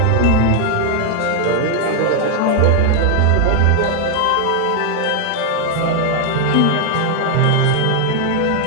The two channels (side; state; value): both; different; correlation 0.00